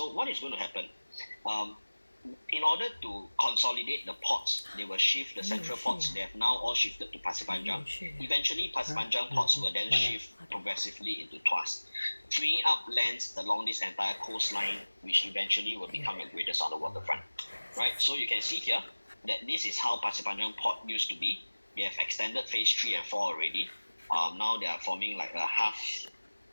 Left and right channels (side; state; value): both; inverted; correlation -1.00